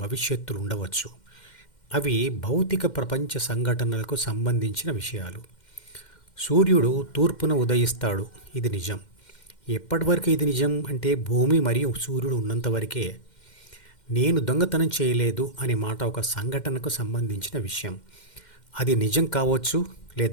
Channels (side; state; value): right; late; 2.1 ms